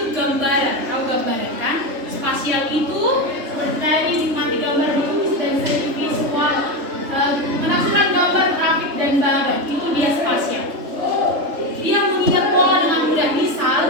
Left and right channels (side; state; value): left; late; 3.4 ms